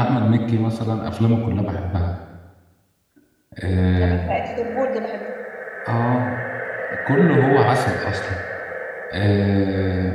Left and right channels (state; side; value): identical; both; correlation 1.00